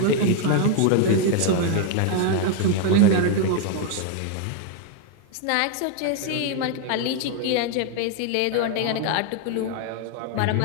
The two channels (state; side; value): different; both; correlation 0.01